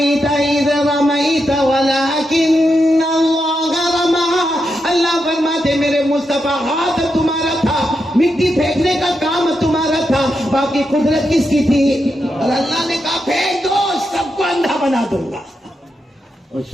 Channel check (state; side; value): normal; both; correlation 0.85